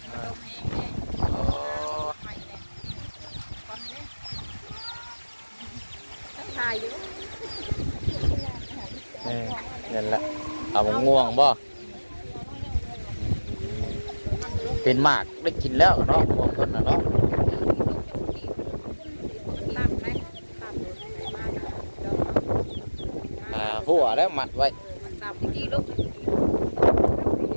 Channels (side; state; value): both; inverted; correlation -1.00